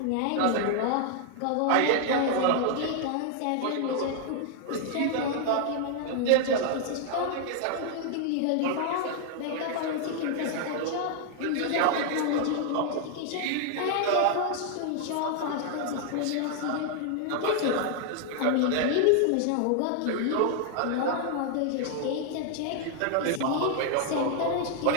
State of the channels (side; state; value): both; different; correlation 0.00